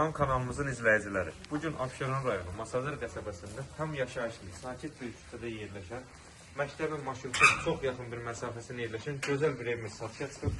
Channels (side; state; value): both; identical; correlation 1.00